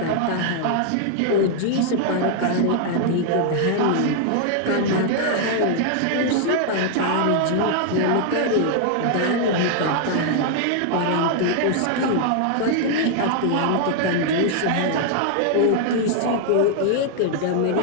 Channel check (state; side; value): different; both; correlation 0.00